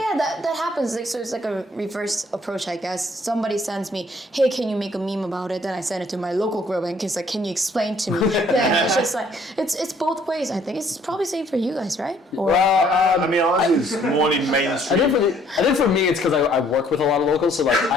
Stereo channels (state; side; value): normal; both; correlation 0.62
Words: That happens. Like, so it's like a reverse approach, I guess. Somebody sends me, hey, can you make a meme about it? Then I send it to my local group and it's like, can you explain to me? Then it's just like, it's both ways, I think. It's probably same for you guys, right? Or, Well, I mean, ours is more in mainstream. I think for me it's because I work with a lot of locals, so like